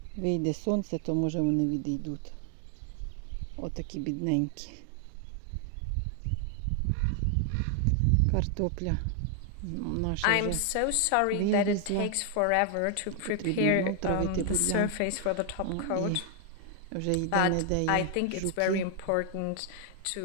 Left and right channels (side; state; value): both; different; correlation 0.00